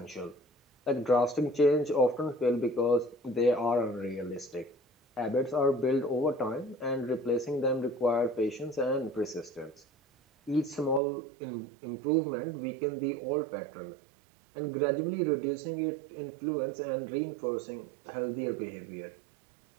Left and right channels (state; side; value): drops out; left; at 11.0 s